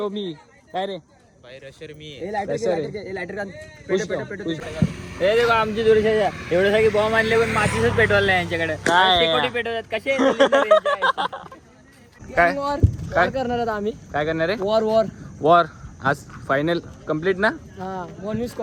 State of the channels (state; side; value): identical; both; correlation 1.00